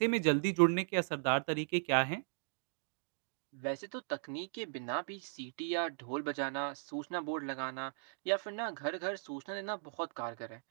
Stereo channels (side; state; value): left; silent; digital silence